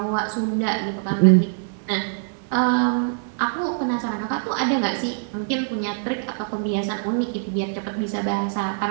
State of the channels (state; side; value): silent; left; digital silence